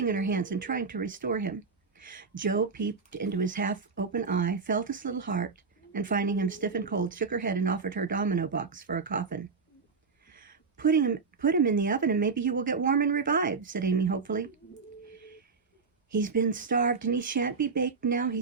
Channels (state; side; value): quieter; left; 4.9 dB